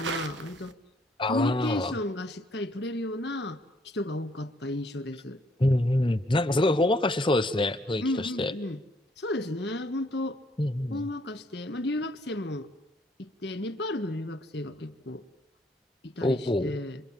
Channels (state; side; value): normal; both; correlation 0.67